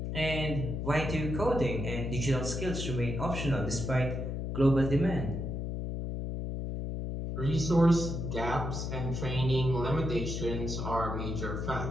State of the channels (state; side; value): noise; left; hum, 3 dB below the sound